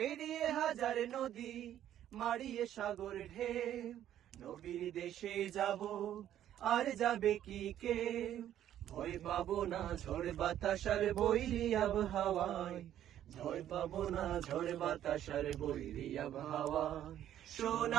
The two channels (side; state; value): left; quieter; 11.3 dB